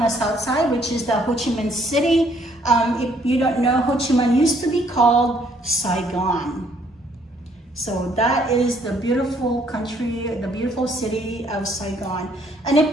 south side, which is the Ho Chi Minh City. If you don't know, Ho Chi Minh used to be called Saigon. So that is the beautiful country, the beautiful city of Saigon. And if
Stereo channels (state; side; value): normal; both; correlation 0.65